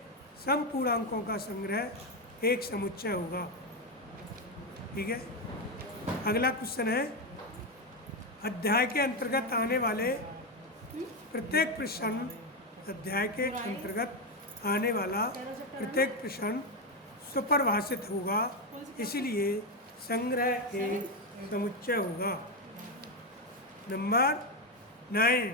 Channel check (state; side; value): normal; both; correlation 0.09